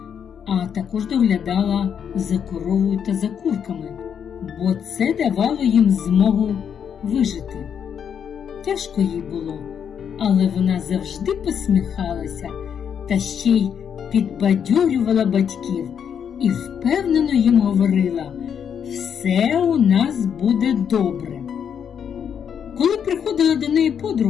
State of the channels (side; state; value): right; quieter; 7.9 dB